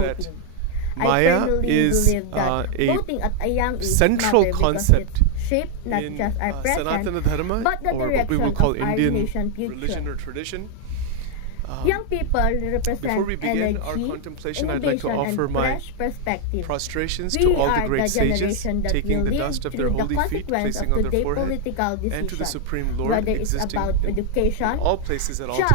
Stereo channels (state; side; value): different; both; correlation 0.00